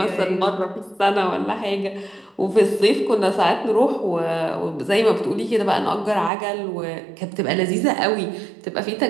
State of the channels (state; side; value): drops out; left; at 6.3 s